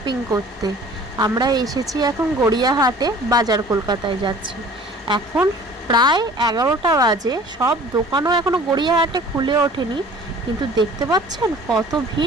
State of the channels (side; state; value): both; normal; correlation 0.47